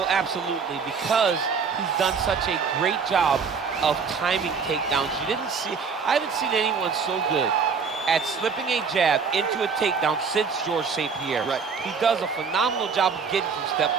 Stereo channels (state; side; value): quieter; left; 5.7 dB